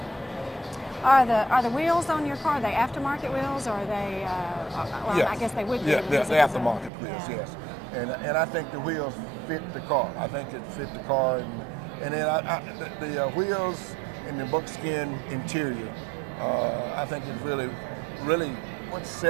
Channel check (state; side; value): drops out; left; at 6.9 s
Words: Are the wheels on your car, are they aftermarket wheels, or are they, I guess they would be. Yeah, they're aftermarket wheels, yes. and I think the wheels fit the car. I think it fit the car, and then the wheels and the buckskin interior. I think it's really what